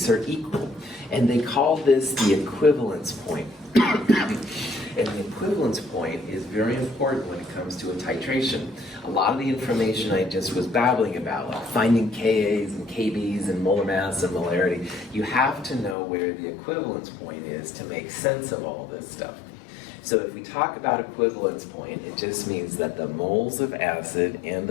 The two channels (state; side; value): drops out; right; at 16.0 s